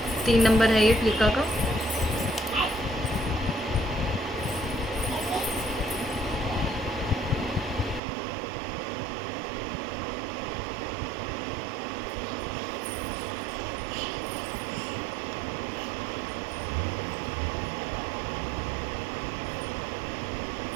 3 नंबर है ये फ्लिका का।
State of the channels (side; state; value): left; drops out; at 8.0 s